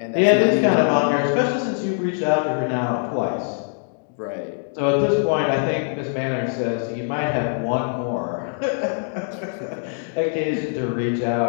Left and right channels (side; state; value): right; silent; 64 dB below the other